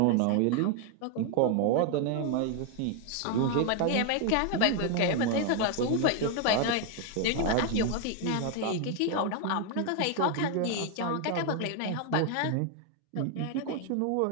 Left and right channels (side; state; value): both; different; correlation 0.01